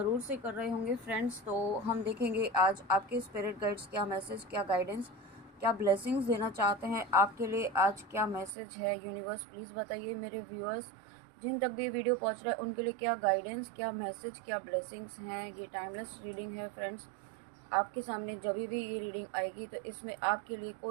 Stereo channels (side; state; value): left; drops out; at 8.6 s